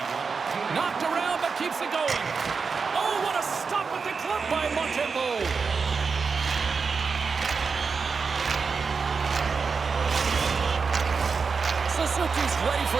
Knocked around, but keeps it going. Oh, what a stop with the club by Montembeault. Suzuki's ready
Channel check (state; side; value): quieter; left; 5.1 dB